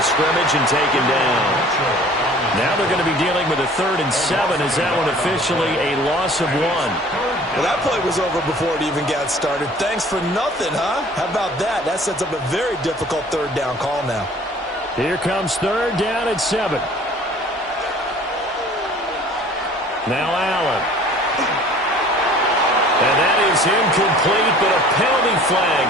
scrimmage and taken down. Now they're going to be dealing with a 3rd and 7. Is that one officially a loss of 1? Well, that play was over before it even got started. Thanks for nothing, huh? How about that? That sets up a very difficult 3rd down call now. Here comes 3rd down and 7. Now Allen. And that is incomplete, but a penalty flag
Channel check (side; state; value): both; normal; correlation 0.49